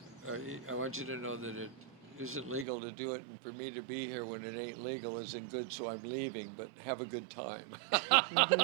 I want you to know that it isn't legal to do it, and for me to be here when it ain't legal isn't good, so I'm leaving, but have a good time.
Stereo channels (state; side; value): drops out; left; at 2.7 s